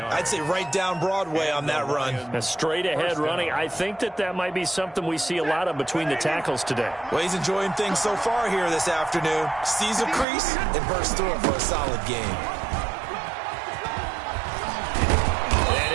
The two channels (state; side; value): drops out; left; at 10.2 s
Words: say right down Broadway on that run. A straight-ahead running. I think that might be something we see a lot of between the tackles today. Well, he's enjoying things so far here this afternoon. Sees a crease and bursts through it for a solid gain.